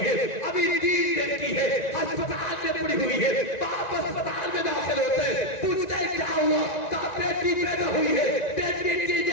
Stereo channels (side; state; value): right; late; 1.9 ms